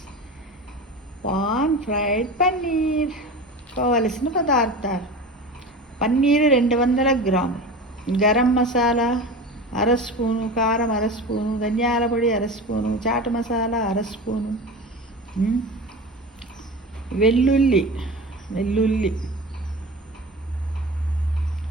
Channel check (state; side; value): normal; both; correlation 0.31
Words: Pan fried paneer. కావలసిన పదార్థాలు: పన్నీరు 200 గ్రాములు, గరం మసాలా అర స్పూను, కారం అర స్పూను, ధనియాల పొడి అర స్పూను, చాట్ మసాలా అర స్పూను, వెల్లుల్లి